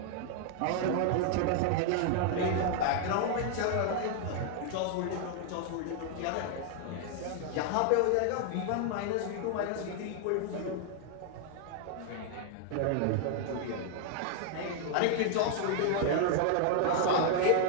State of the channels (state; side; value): different; both; correlation 0.00